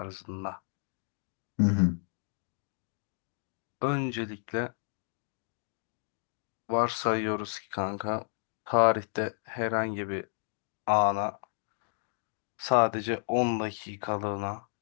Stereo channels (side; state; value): right; silent; 56 dB below the other